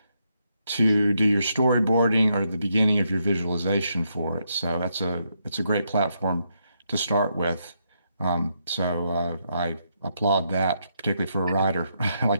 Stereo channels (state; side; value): inverted; both; correlation -0.79